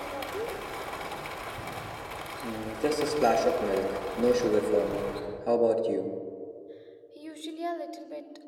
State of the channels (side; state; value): both; identical; correlation 1.00